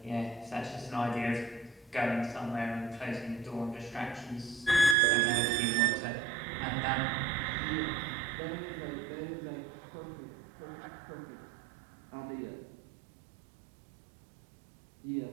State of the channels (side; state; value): left; drops out; at 5.0 s